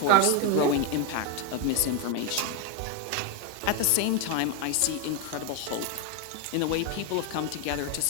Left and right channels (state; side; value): different; both; correlation 0.01